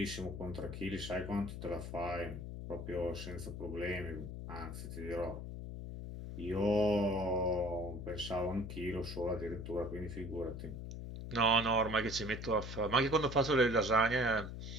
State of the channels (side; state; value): left; noise; hum, 7 dB below the sound